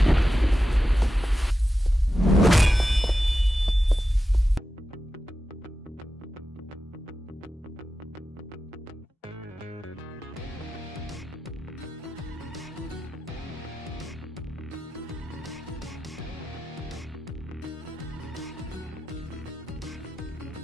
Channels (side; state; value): both; normal; correlation 0.92